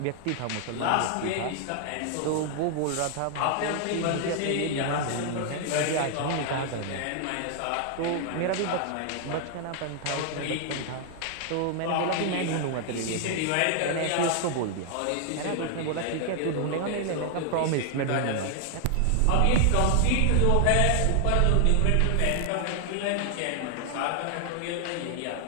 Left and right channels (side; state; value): both; different; correlation 0.00